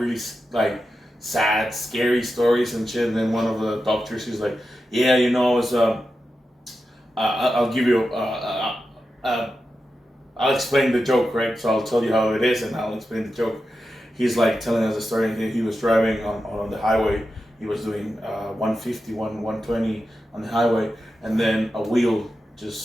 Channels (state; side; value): normal; both; correlation 0.90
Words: like sad, scary stories and shit. And then one of the doctors, he's like, yeah, it was I'll give you I'll explain the joke, right? So I'll tell you how it is and I'll explain the joke. He's like telling us a story. He was driving on the highway. He was doing 150, 120 on the highway, and then a wheel